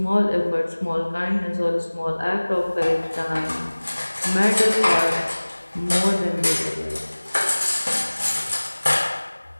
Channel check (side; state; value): both; inverted; correlation -1.00